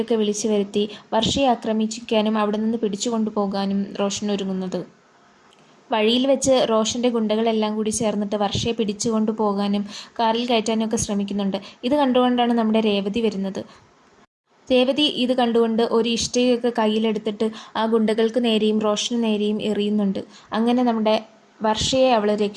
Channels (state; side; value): identical; both; correlation 1.00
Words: വിളിച്ചു വരുത്തി വർഷയെ ആക്രമിക്കാനും അവിടെ നിന്ന് പിടിച്ചു കൊണ്ടുപോകാനും റോഷൻ ഒരുങ്ങുന്നത്. വഴിയിൽ വെച്ച് റോഷൻ്റെ ഗുണ്ടകളെല്ലാം കൂടി ചേർന്നിട്ട് വർഷയെ പിടിച്ചു കൊണ്ടുപോകാനും കാറിൽ കയറ്റാനും ഒക്കെ ശ്രമിക്കുന്നുണ്ട്. ഇത് കണ്ടുകൊണ്ടാണ് നമ്മുടെ രേവതി വരുന്നത്. രേവതി ഇത് കണ്ടുകൊണ്ട് ഒരു ഇഷ്ടികയൊക്കെ കയ്യിലെടുത്തിട്ട് ആ ഗുണ്ടകൾക്ക് നേരെയും റോഷന് നേരെയും എറിയുന്നുണ്ട്. അങ്ങനെ നമ്മുടെ വർഷയെ അവൾ